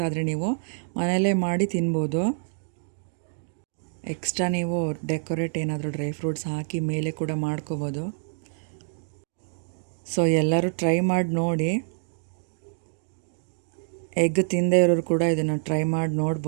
ಆದರೆ ನೀವು ಮನೆಯಲ್ಲೇ ಮಾಡಿ ತಿನ್ಬೋದು. ಎಕ್ಸ್ಟ್ರಾ ನೀವು ಡೆಕೋರೇಟ್ ಏನಾದರೂ ಡ್ರೈ ಫ್ರೂಟ್ಸ್ ಹಾಕಿ ಮೇಲೆ ಕೂಡ ಮಾಡ್ಕೋಬೋದು. ಸೊ ಎಲ್ಲರೂ ಟ್ರೈ ಮಾಡಿ ನೋಡಿ. ಎಗ್ ತಿಂದೇ ಇರೋರು ಕೂಡ ಇದನ್ನು ಟ್ರೈ ಮಾಡಿ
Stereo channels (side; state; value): left; silent; digital silence